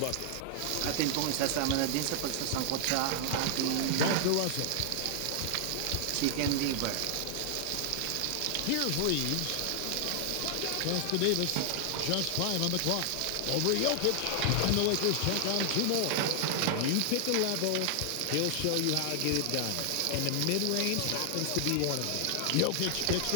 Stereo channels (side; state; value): both; different; correlation 0.00